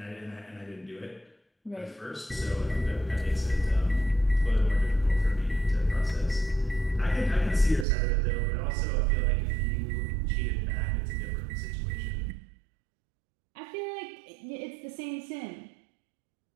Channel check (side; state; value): left; drops out; at 7.9 s